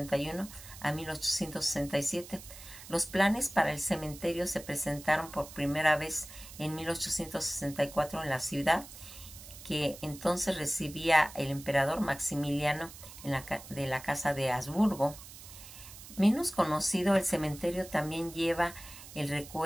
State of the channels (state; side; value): noise; right; hiss, 16 dB below the sound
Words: a 1867. Los planes para el cementerio se presentaron por primera vez en 1864 en la ciudad, que entonces recibía el emperador Maximiliano de la Casa de Habsburgo. Menos conocido, el cementerio también lleva